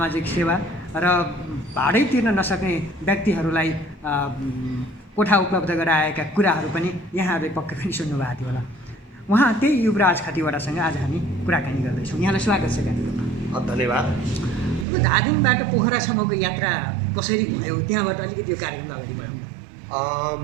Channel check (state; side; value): drops out; left; at 14.9 s